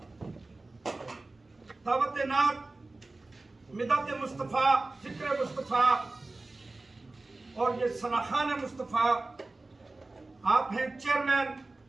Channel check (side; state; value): left; quieter; 3.2 dB